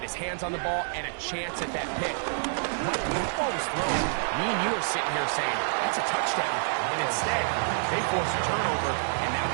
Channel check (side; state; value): left; silent; digital silence